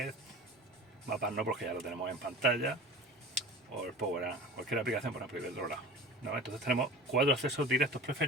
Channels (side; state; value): both; normal; correlation 0.37